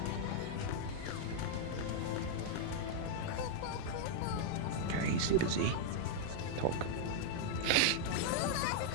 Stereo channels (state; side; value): different; both; correlation -0.01